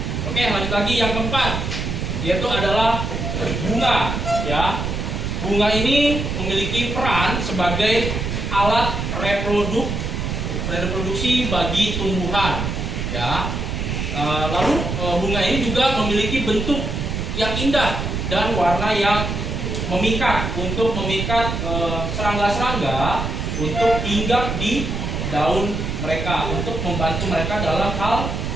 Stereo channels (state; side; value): noise; right; rumble, 3 dB below the sound